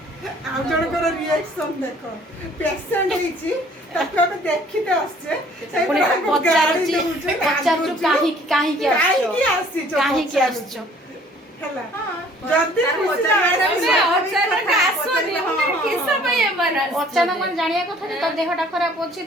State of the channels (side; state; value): both; normal; correlation 0.55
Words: आउ जनकर रिएक्शन देख पेशेंट होइछि ताको हम देखिते आछे पुणी पचारु काहे की आछो हला जल्दी अचानक मन जानिया कथा जे तो देहटा खराब होछि